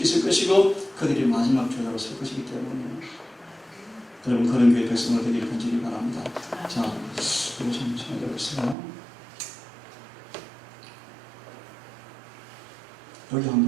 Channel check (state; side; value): drops out; left; at 8.8 s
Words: 것이고 그들이 마지막 교회로 설 것이기 때문에 여러분 그런 교회 백성으로 되기를 간절히 바랍니다. 자, 이거 좀 찾아보세요. 여기